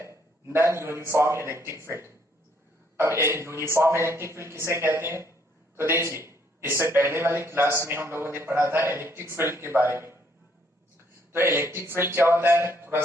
नॉन यूनिफॉर्म इलेक्ट्रिक फील्ड। अब यूनिफॉर्म इलेक्ट्रिक फील्ड किसे कहते हैं? तो देखिए, इससे पहले वाली क्लास में हम लोगों ने पढ़ा था इलेक्ट्रिक फील्ड के बारे में। तो इलेक्ट्रिक फील्ड क्या होता है, थोड़ा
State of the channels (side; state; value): both; normal; correlation 0.68